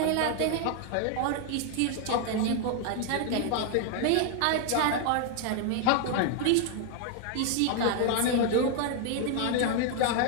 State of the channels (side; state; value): both; different; correlation 0.00